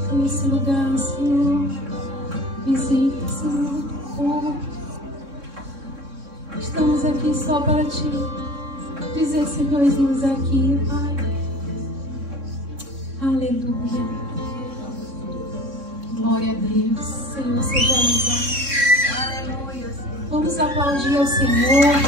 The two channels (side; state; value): left; late; 3.6 ms